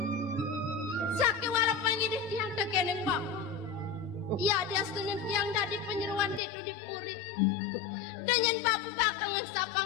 Saki walau pangidih tiang tekeneng Bapak. Ya dia senin tiang dadi penyeruan itu dipuri. Dengan Bapak bakal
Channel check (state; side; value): drops out; right; at 6.4 s